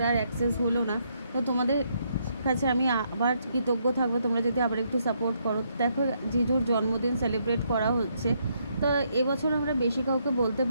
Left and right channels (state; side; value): inverted; both; correlation -0.74